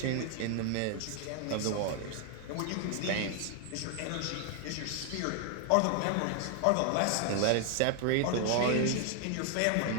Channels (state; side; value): different; both; correlation 0.00